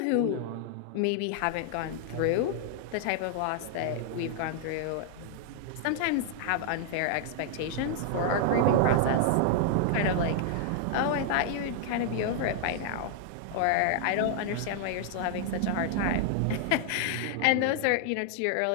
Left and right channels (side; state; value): both; different; correlation 0.00